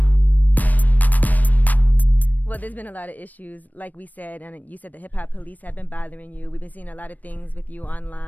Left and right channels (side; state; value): right; late; 0.083 ms